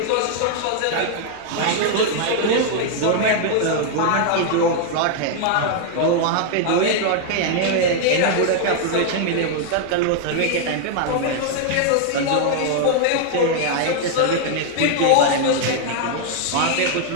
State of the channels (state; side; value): different; both; correlation 0.00